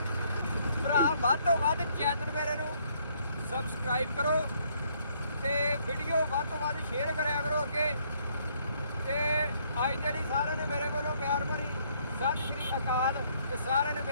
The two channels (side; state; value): both; inverted; correlation -0.68